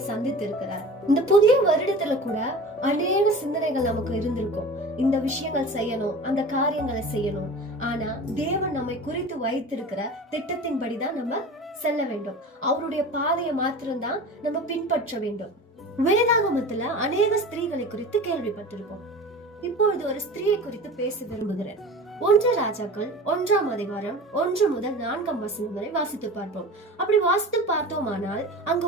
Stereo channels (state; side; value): normal; both; correlation 0.36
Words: சந்தித்து இருக்கிறார். இந்த புதிய வருடத்துல கூட அநேக சிந்தனைகள் நமக்கு இருந்திருக்கும். இந்த விஷயங்கள் செய்யணும், அந்த காரியங்களை செய்யணும். ஆனா தேவன் நம்மை குறித்து வைத்திருக்கிற திட்டத்தின்படிதான் நம்ம செல்ல வேண்டும். அவருடைய பாதையை மாத்திரம்தான் நம்ம பின்பற்ற வேண்டும். வேதாகமத்துல அநேக ஸ்திரீகளை குறித்து கேள்விப்பட்டிருக்கோம். இப்பொழுது ஒரு ஸ்திரீயை குறித்து பேச விரும்புகிறேன். 1 ராஜாக்கள் 1ஆம் அதிகாரம் 1 முதல் 4ஆம் வசனம் வரை வாசித்து பார்ப்போம். அப்படி வாசித்து பார்த்தோமானால் அங்க